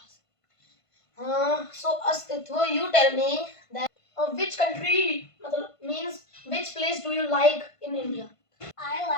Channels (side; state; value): right; late; 1.5 ms